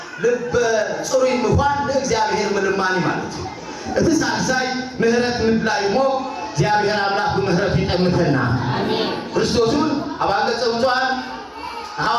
ልብ ጽሩ ይምፋን ለእግዚአብሔር ምልማኒ ማለት እቲ ሳልሳይ ምህረት ምድላይሞ እግዚአብሔር አምላክ በምህረት ይጠምተና አሜን ክርስቶስን አባገጸውቷን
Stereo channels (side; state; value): both; identical; correlation 1.00